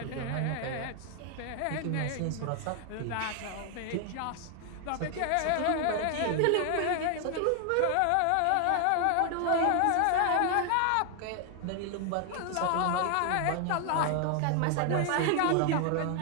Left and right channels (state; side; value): different; both; correlation 0.00